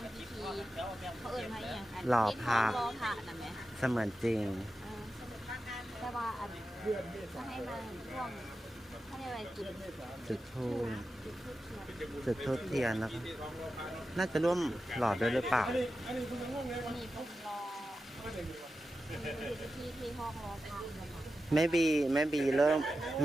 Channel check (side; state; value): both; normal; correlation 0.91